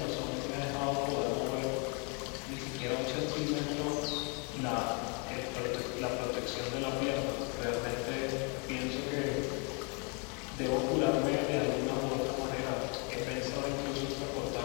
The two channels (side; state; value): right; quieter; 34.8 dB